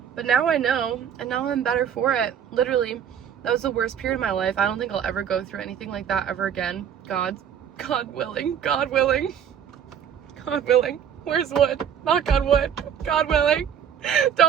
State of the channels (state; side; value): quieter; left; 8.5 dB